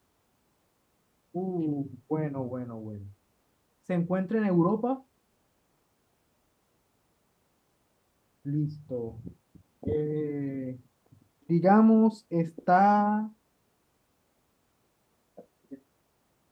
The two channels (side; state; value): both; identical; correlation 1.00